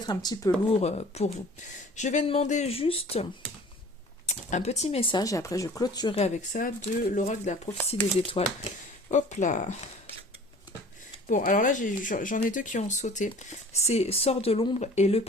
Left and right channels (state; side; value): normal; both; correlation 0.46